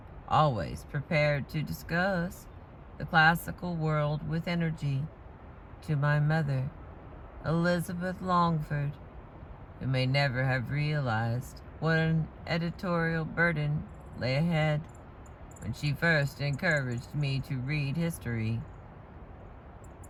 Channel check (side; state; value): both; identical; correlation 1.00